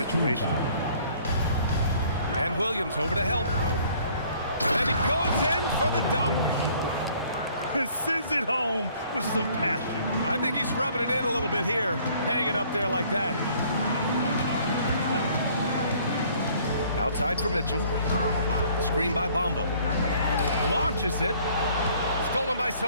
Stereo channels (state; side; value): inverted; both; correlation -0.58